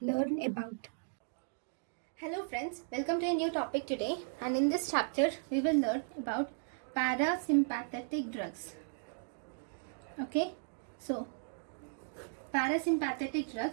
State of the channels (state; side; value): silent; left; digital silence